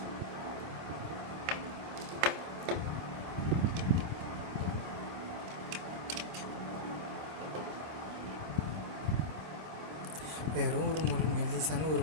வெறும் ஒரு மெல்லிசான ஒரு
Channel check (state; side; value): late; left; 26 ms